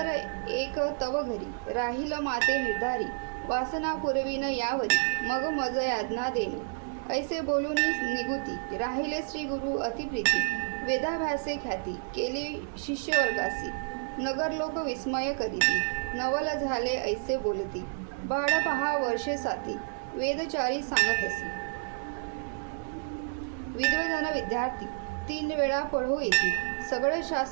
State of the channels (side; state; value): left; silent; digital silence